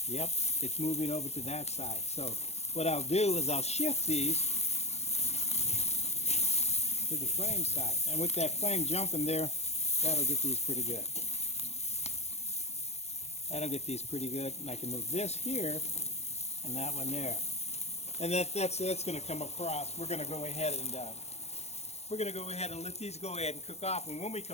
Yep, it's moving over to that side. So what I'll do is I'll shift these to the flame side. And with that flame jumping there, that'll get these pretty good. That'll get these pretty good. And I can move this here and that one there. And that's going to come across. We're going to go ahead and let these go ahead and cook off. And when we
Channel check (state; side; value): late; right; 0.31 ms